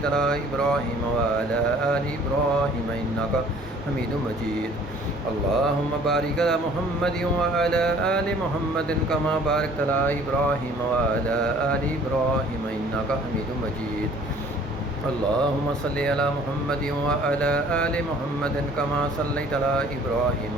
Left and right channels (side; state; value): both; normal; correlation 0.53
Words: على إبراهيم وعلى آل إبراهيم إنك حميد مجيد. اللهم بارك على محمد وعلى آل محمد كما باركت على إبراهيم وعلى آل إبراهيم إنك حميد مجيد. اللهم صل على محمد وعلى آل محمد كما صليت على إبراهيم